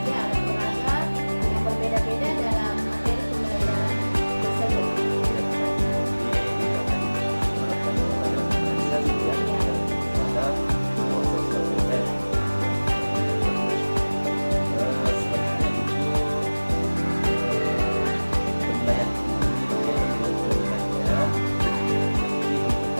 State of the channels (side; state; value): both; inverted; correlation -1.00